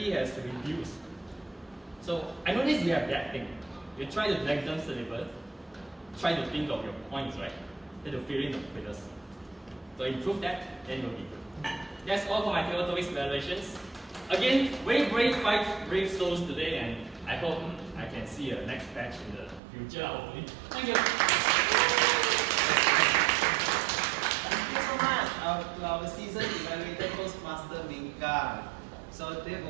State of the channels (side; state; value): left; drops out; at 19.6 s